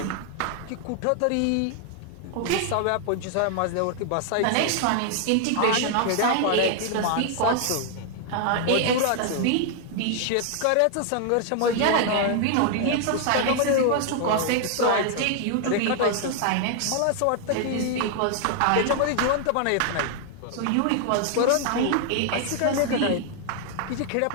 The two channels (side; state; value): both; different; correlation 0.00